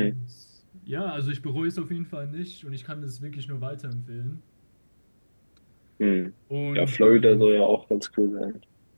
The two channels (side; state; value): both; inverted; correlation -1.00